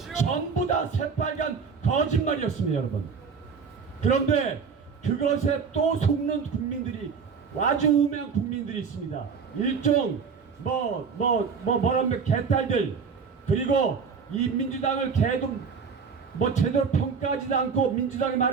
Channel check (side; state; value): left; quieter; 5.8 dB